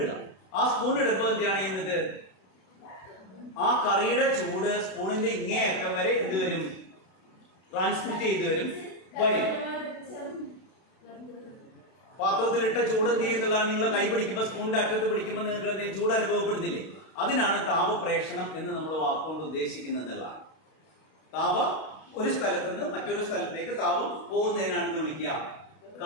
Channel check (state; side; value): late; right; 32 ms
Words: ആ സ്പൂൺ ഇടുമ്പോൾ എന്താണ് ചെയ്യുന്നത്? ആ കറിയുടെ ചൂട് സ്പൂണിന്റെ ഇങ്ങേയറ്റം വരെ എന്ത് വരും? ട്രാൻസ്മിറ്റ് ചെയ്ത് വരും. പാത്രത്തിലിട്ട ചൂട് എന്ത് ചെയ്യുന്നില്ല, നിങ്ങൾ കൈ പിടിക്കുമ്പോൾ സ്പൂണിന്റെ അറ്റത്ത് പിടിക്കുമ്പോൾ നിങ്ങൾക്ക് ചൂട് അനുഭവപ്പെടുന്നില്ലേ? അതിനാണ് താപപ്രേഷണം എന്ന് നമ്മൾ വാക്കുകൊണ്ട് ഉദ്ദേശിക്കുന്നതെന്നുള്ളതാണ്. താപം ഒരു സ്ഥലത്ത് നിന്ന് മറ്റൊരു സ്ഥലത്തേക്ക് താപം പോകുന്നതിനാണ് എന്ന് വിളിക്കുക